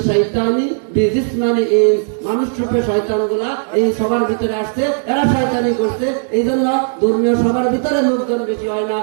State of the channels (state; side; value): silent; left; 69 dB below the other